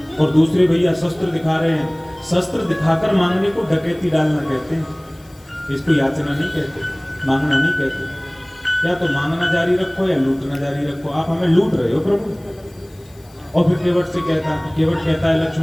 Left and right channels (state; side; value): noise; left; hiss, 29 dB below the sound